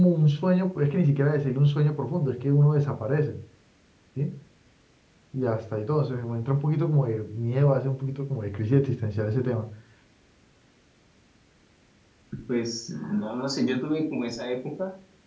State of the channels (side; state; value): both; identical; correlation 1.00